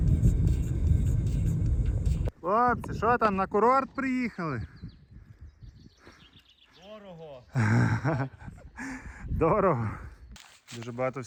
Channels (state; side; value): identical; both; correlation 1.00